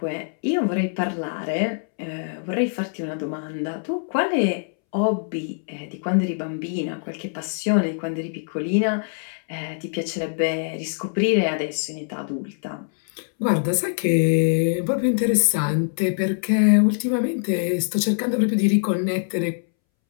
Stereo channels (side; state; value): right; silent; 63 dB below the other